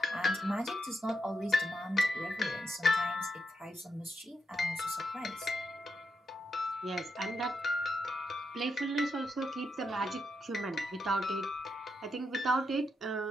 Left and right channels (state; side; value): normal; both; correlation 0.83